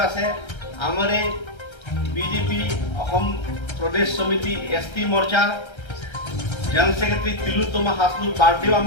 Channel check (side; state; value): right; late; 1.3 ms